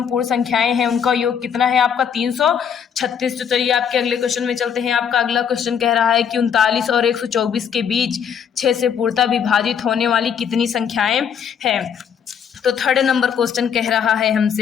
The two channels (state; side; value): quieter; right; 7.7 dB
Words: पूर्ण संख्याएं हैं उनका योग कितना है आपका 336। तो चलिए आपके अगले क्वेश्चन में चलते हैं। आपका अगला क्वेश्चन कह रहा है कि 39 और 124 के बीच 6 से पूर्णतः विभाजित होने वाली कितनी संख्याएं हैं। तो थर्ड नंबर क्वेश्चन कह रहा है